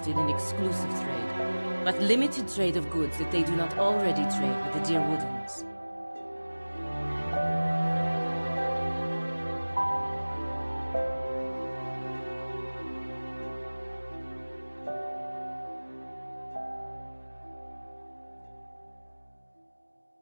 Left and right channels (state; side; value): inverted; both; correlation -1.00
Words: in exclusive trade, but limited trade of goods that they do not already trade with the Deerwoodans.